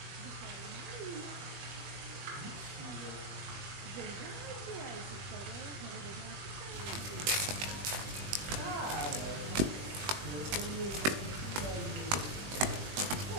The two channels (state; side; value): late; left; 20 ms